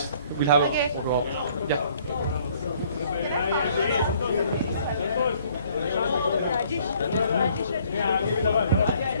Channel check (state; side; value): inverted; both; correlation -0.61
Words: We'll have Okay. yeah.